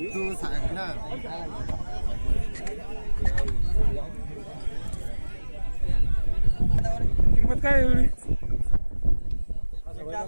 तू सांग ना. किंमत काय आहे एवढी?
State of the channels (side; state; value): both; inverted; correlation -1.00